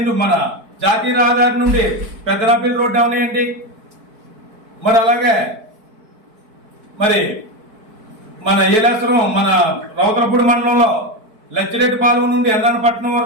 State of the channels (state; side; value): late; left; 4.6 ms